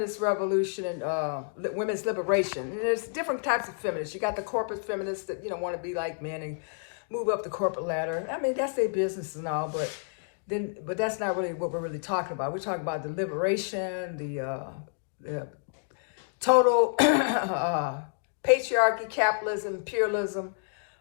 revolution and women's liberation. And there's different types of feminists. You got the corporate feminists that, want to be like men and move up the corporate ladder. I mean, that's their business and all, but that's not really what we're really talking about. We're talking about the liberation, the total patriarchy, capitalism, imperialism,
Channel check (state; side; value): silent; right; digital silence